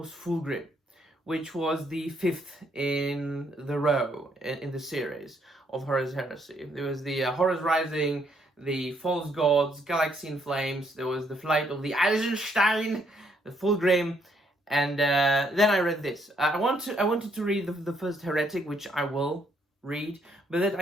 Fulgrim, which was the 5th in the row in the series of Horus Heresy. There was the Horus Rising, the False Gods, Galaxy in Flames, there was the Flight of the Eisenstein, the Fulgrim, and then I read this. I wanted to read the first Heretic, which I will read, but that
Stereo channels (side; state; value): both; normal; correlation 0.71